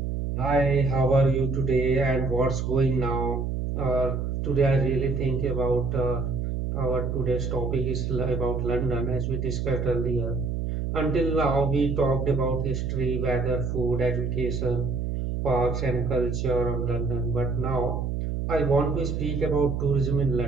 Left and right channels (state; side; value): noise; right; hum, 2 dB below the sound